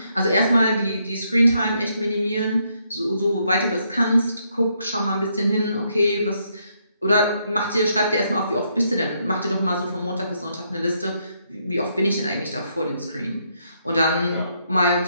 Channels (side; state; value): both; inverted; correlation -0.75